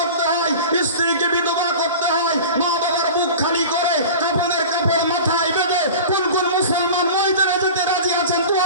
হয়, স্ত্রীকে বিধবা করতে হয়, মা বাবার বুক খালি করে কাপড়ের কাপড় মাথায় বেঁধে কোন কোন মুসলমান ময়দানে যেতে রাজি আছেন? তো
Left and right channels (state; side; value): inverted; both; correlation -0.35